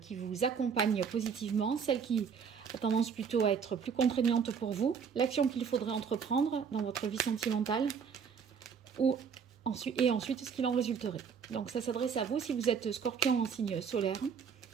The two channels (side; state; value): left; quieter; 6.6 dB